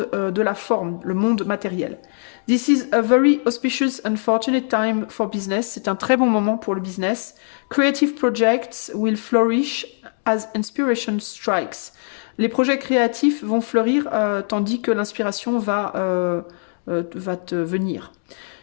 de la forme, le monde matériel. This is a very auspicious and fortunate time for business. C'est un très bon moment pour le business. Creative projects will flourish as inspiration strikes. Les projets créatifs vont fleurir tandis que l'inspiration va te venir.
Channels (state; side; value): silent; right; 61 dB below the other